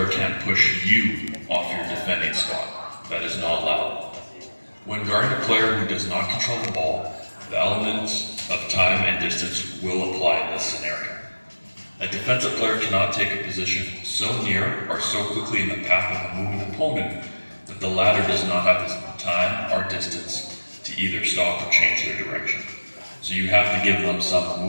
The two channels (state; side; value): inverted; both; correlation -1.00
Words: can't push you off your defending spot. That is not allowed. When guarding a player who does not control the ball, the elements of time and distance will apply in this scenario. A defensive player cannot take a position so near or so quickly in the path of a moving opponent that the latter does not have the time or distance to either stop or change their direction. So you have to give them some